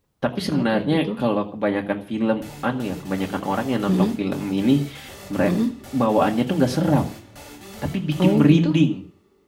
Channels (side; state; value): both; identical; correlation 1.00